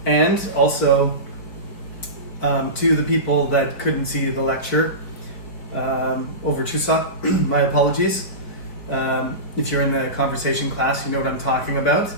and also to the people that couldn't see the lecture over Chuseok, my apologies. If you're in the conversation class, you know what I'm talking about.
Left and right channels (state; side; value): late; right; 4.8 ms